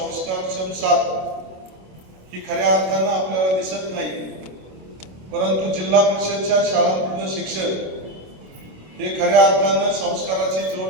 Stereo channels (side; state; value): left; late; 27 ms